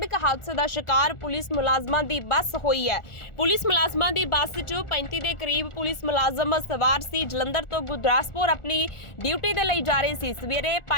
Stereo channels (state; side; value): late; right; 1.4 ms